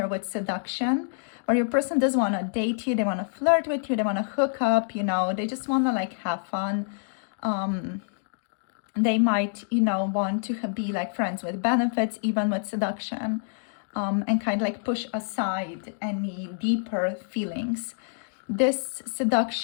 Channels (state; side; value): silent; right; digital silence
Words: with seduction, where your person does want to date you, they want to flirt with you, they want to hook up, you know, they just want to like have fun. They might, you know, want to be like friends with benefits, even with seduction, and kind of like push aside any deeper feelings. This